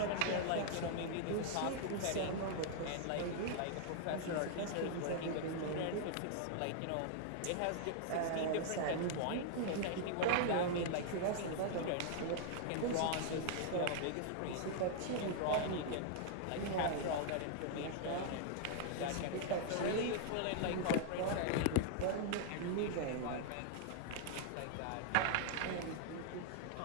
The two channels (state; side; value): different; both; correlation -0.01